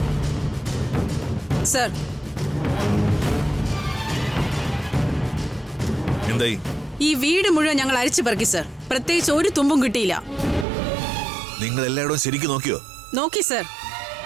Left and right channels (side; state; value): left; drops out; at 10.7 s